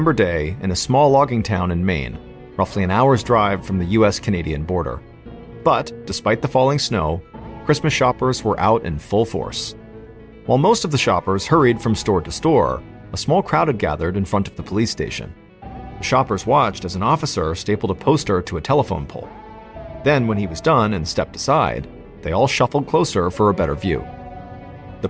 day in a small logging town in Maine, roughly an hour's drive from the US-Canadian border. But, despite the falling snow, Christmas shoppers were out in full force. While most of the shoppers hurried from store to store, a small crowd had gathered in front of the police station. The shoppers watched as an officer stapled a poster to a telephone pole. Then, when he was done and stepped aside, they all shuffled closer for a better view. The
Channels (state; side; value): identical; both; correlation 1.00